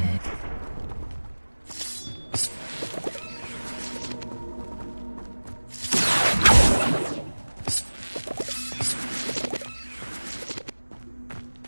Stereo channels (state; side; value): inverted; both; correlation -1.00